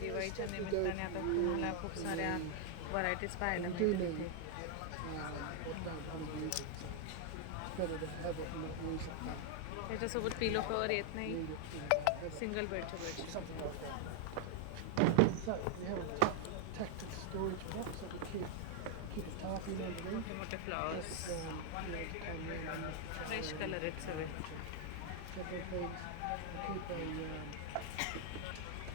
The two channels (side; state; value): both; different; correlation 0.00